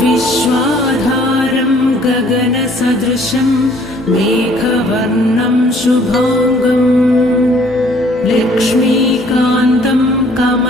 विश्वाधारं गगनसदृशं मेघवर्णं शुभाङ्गं लक्ष्मीकान्तं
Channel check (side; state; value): both; normal; correlation 0.59